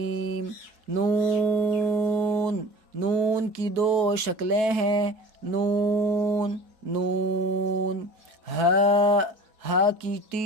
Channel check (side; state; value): left; late; 4.6 ms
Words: نون نون کی 2 شکلیں ہیں نون نون. ہا ہا کی